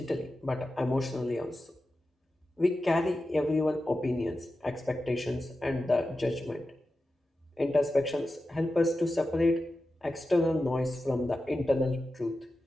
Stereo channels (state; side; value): normal; both; correlation 0.92